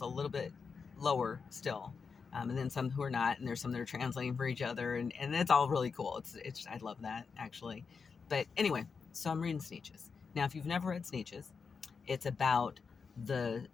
a little bit lower still, and then some who are not, and there's some that are translating for each other, and it's all really cool. It's I love that actually. But anyway, so I'm reading Sneetches. Now, if you've never read Sneetches, it's about the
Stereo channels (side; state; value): right; quieter; 5.4 dB